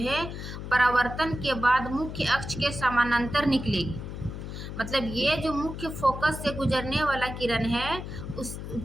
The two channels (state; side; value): noise; left; hum, 8 dB below the sound